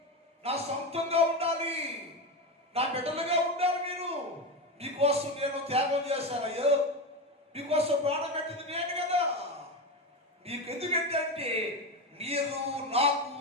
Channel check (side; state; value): both; normal; correlation 0.17